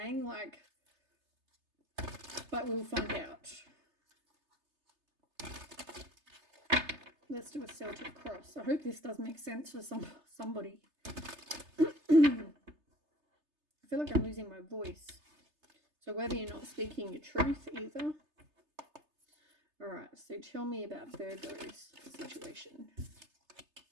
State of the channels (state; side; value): late; left; 3.3 ms